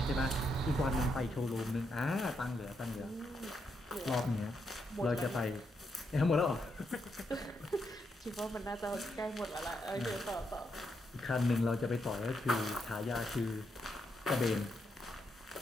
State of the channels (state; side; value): normal; both; correlation 0.80